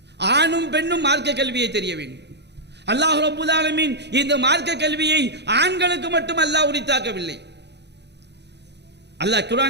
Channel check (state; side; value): late; left; 0.50 ms